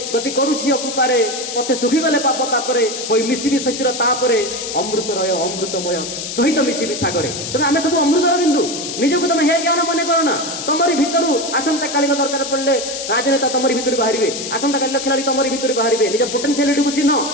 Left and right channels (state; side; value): noise; left; hiss, 6 dB below the sound